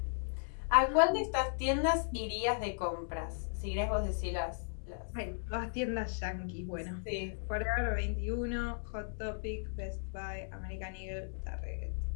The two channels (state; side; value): silent; right; digital silence